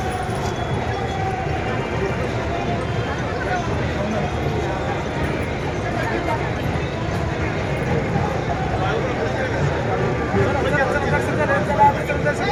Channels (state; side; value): identical; both; correlation 1.00